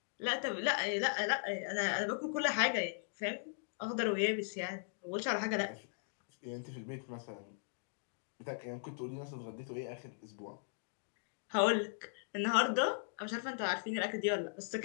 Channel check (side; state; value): right; silent; digital silence